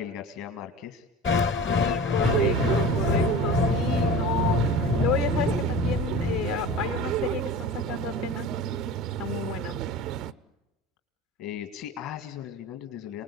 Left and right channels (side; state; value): both; normal; correlation 0.35